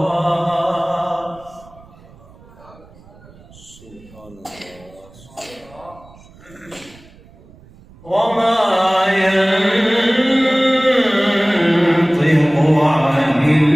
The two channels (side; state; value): right; noise; rumble, 24 dB below the sound